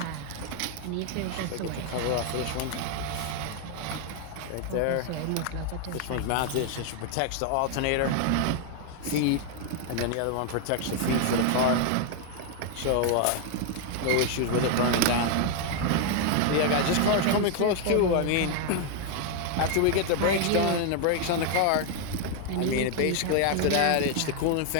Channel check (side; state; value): both; different; correlation 0.00